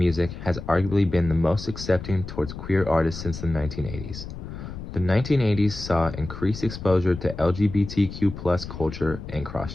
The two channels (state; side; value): noise; left; rumble, 10 dB below the sound